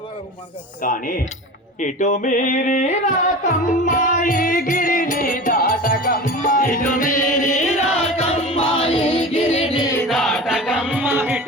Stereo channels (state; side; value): normal; both; correlation 0.33